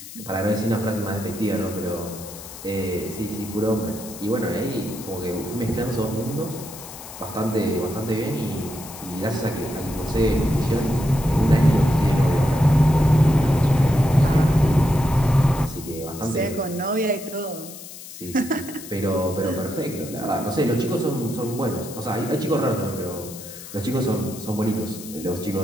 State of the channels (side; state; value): left; noise; hiss, 14 dB below the sound